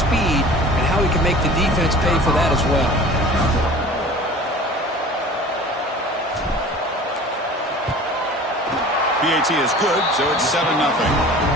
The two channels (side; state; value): both; normal; correlation 0.42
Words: and how he can make the defense pay for that as well. PAT is good, so it's 7-0.